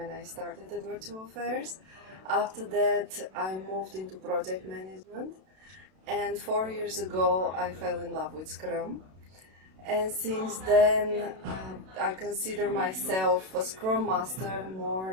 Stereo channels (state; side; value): late; left; 32 ms